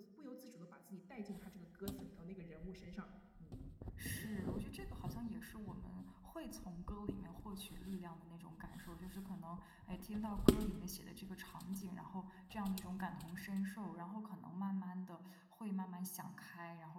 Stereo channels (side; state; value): both; identical; correlation 1.00